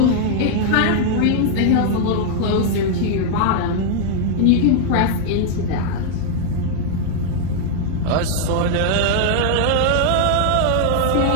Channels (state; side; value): different; both; correlation 0.00